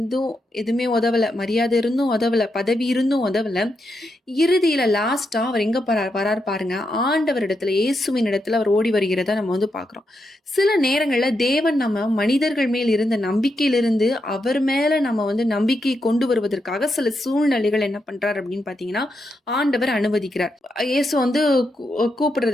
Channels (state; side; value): normal; both; correlation 0.83